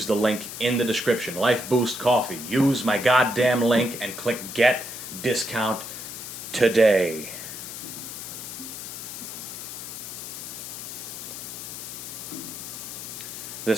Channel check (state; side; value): noise; left; hiss, 9 dB below the sound